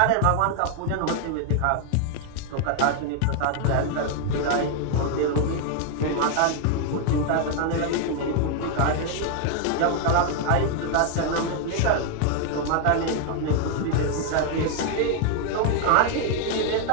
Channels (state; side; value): different; both; correlation 0.00